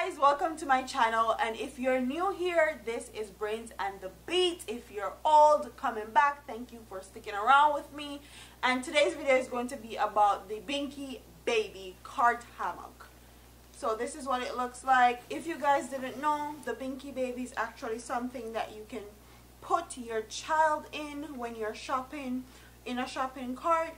welcome to my channel, and if you're new here, this is Brains and the Beat. If you're old, coming back, thank you for sticking around with me. And today's video is going to be about the Binxybaby cart hammock. So this is what it looks like. If you guys didn't know, the Binxybaby is actually something that you can put your child in when you're shopping in a shopping cart,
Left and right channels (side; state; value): both; identical; correlation 1.00